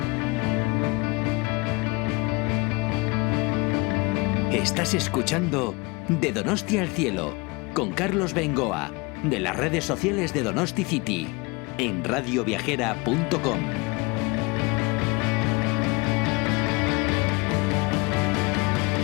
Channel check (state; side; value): quieter; right; 26.4 dB